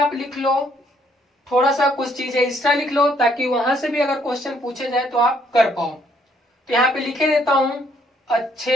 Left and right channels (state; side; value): normal; both; correlation 0.68